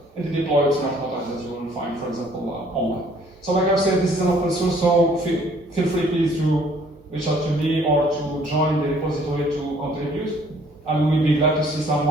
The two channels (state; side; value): normal; both; correlation 0.59